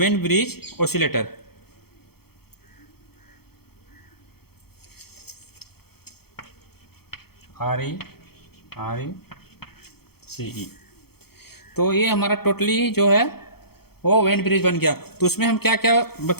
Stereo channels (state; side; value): late; right; 0.96 ms